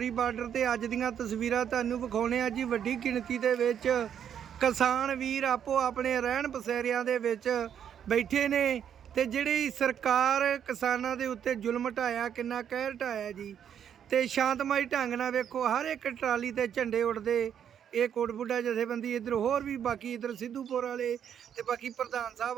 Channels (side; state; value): left; quieter; 8.9 dB